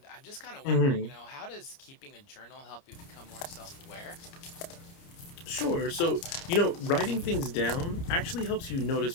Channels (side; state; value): right; late; 30 ms